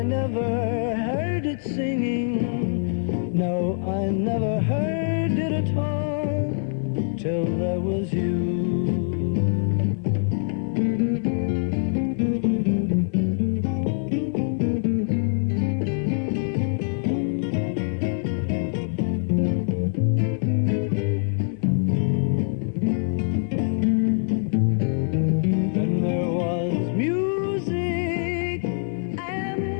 never heard it singing. No, I never heard it at all till there was you.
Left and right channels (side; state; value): right; silent; digital silence